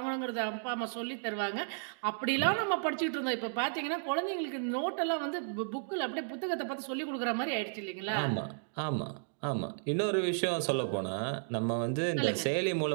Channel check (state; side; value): silent; left; digital silence